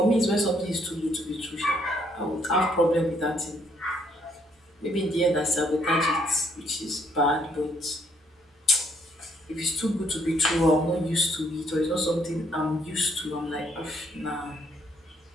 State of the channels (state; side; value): normal; both; correlation 0.69